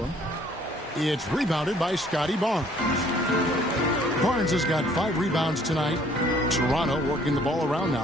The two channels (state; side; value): normal; both; correlation 0.60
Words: him. It's rebounded by Scotty Barnes. Barnes has got 5 rebounds tonight. Toronto working the ball around